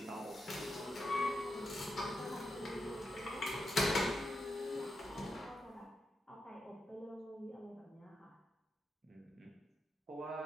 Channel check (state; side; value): normal; both; correlation 0.85